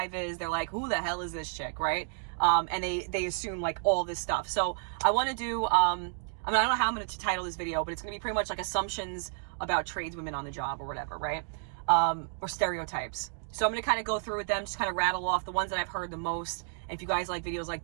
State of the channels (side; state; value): left; silent; 57 dB below the other